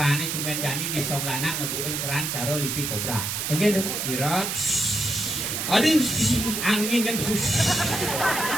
cuman Jani di Songlana ngebukin keran cara lipi kobra. Engken dong. Kira Aduh. angin kan besus.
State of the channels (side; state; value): right; noise; hiss, 2 dB below the sound